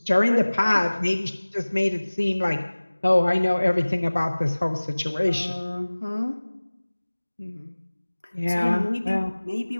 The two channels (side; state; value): both; inverted; correlation -1.00